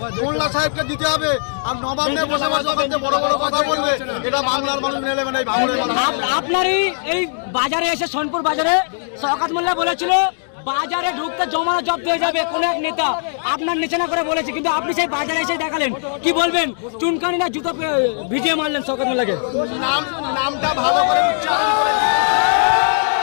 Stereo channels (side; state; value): right; silent; digital silence